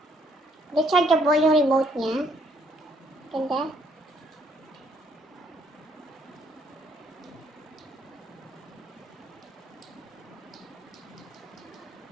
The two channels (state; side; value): normal; both; correlation 0.68